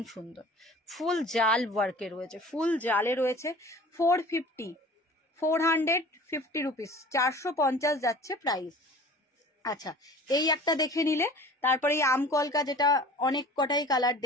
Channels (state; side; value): normal; both; correlation 0.44